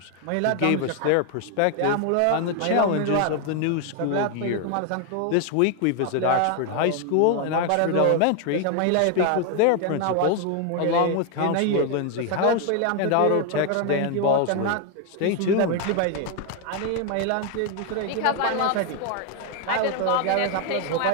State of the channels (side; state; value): both; different; correlation 0.01